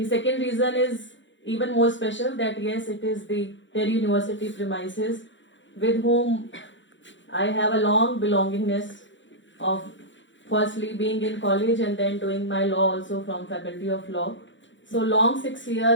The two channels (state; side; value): late; right; 0.54 ms